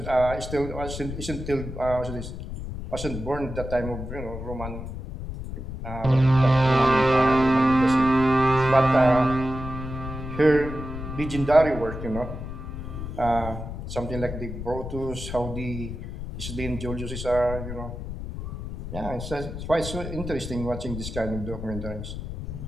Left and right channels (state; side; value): noise; left; rumble, 8 dB below the sound